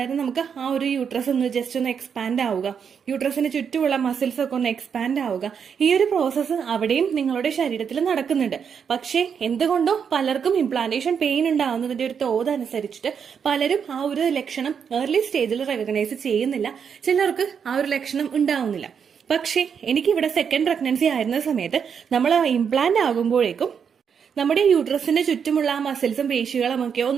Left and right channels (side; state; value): left; quieter; 7.0 dB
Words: നമുക്ക് ആ ഒരു യൂട്രസ് ഒന്ന് ജസ്റ്റ് ഒന്ന് എക്സ്പാൻഡ് ആവുക, യൂട്രസിന് ചുറ്റുമുള്ള മസിൽസ് ഒക്കെ ഒന്ന് എക്സ്പാൻഡ് ആവുക, ഈ ഒരു പ്രോസസ്സ് അവിടെയും നിങ്ങളുടെ ശരീരത്തിൽ നടക്കുന്നുണ്ട്. പക്ഷേ എന്തുകൊണ്ടോ പലർക്കും ഇംപ്ലാന്റേഷൻ പെയിൻ ഉണ്ടാവുന്നതിന്റെ ഒരു തോത് അനുസരിച്ചിട്ട് പലരും ആ ഒരു ലക്ഷണം ഏർലി സ്റ്റേജിൽ റെക്കഗ്നൈസ് ചെയ്യുന്നില്ല. ചിലർക്ക് ആ ഒരു ലക്ഷണം ഉണ്ടാവുന്നില്ല. പക്ഷേ എനിക്കിവിടെ സെക്കൻഡ് പ്രഗ്നൻസി ആയിരുന്ന സമയത്ത് നമ്മൾ ഇംപ്ലാന്റ് ആകുമ്പോഴേക്കും നമ്മുടെ യൂട്രസിന്റെ ചുറ്റുമുള്ള ആ മസിൽസും പേശികളും ഒക്കെ